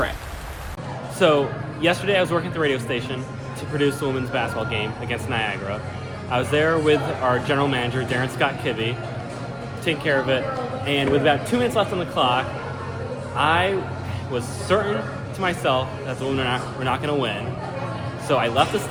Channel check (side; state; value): both; identical; correlation 1.00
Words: So yesterday I was working at the radio station to produce the women's basketball game against Niagara. I was there with our general manager, Darren Scott Kibbe, taking care of it. And with about 2 minutes left on the clock, I was certain to myself that the women were not going to win. So I left the